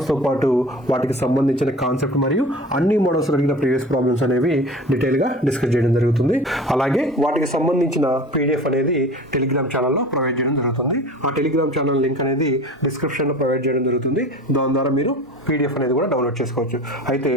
పాటు వాటికి సంబంధించిన కాన్సెప్ట్ మరియు అన్ని మోడల్స్ అడిగిన ప్రీవియస్ ప్రాబ్లమ్స్ అనేవి డీటెయిల్గా డిస్కస్ చేయడం జరుగుతుంది. అలాగే వాటికి సంబంధించిన PDF అనేది టెలిగ్రామ్ ఛానల్లో ప్రొవైడ్ చేయడం జరుగుతుంది. ఆ టెలిగ్రామ్ ఛానల్ లింక్ అనేది డిస్క్రిప్షన్లో ప్రొవైడ్ చేయడం జరుగుతుంది. దాని ద్వారా మీరు PDF అనేది కూడా డౌన్లోడ్ చేసుకోవచ్చు. అయితే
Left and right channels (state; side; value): normal; both; correlation 0.38